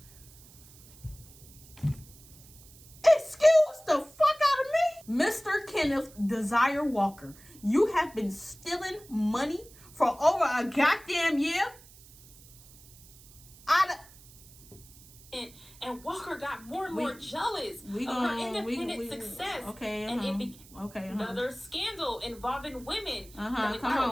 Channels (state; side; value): noise; right; hiss, 22 dB below the sound